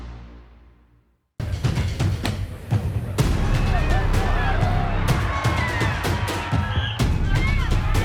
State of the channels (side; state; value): both; identical; correlation 1.00